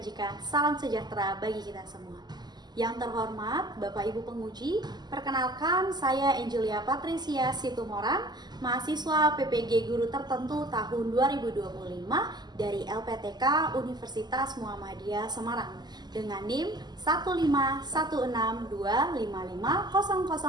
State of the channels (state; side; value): late; left; 0.20 ms